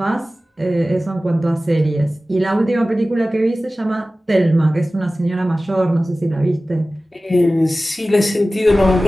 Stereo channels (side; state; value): both; normal; correlation 0.96